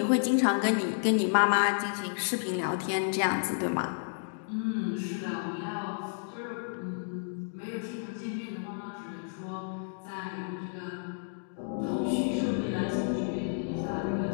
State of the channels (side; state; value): right; silent; digital silence